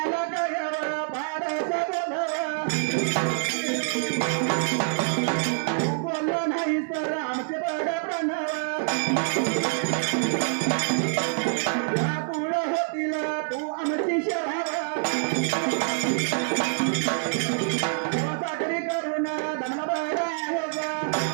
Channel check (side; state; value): left; silent; digital silence